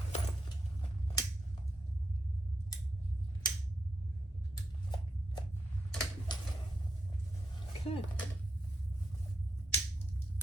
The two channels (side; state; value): both; normal; correlation 0.84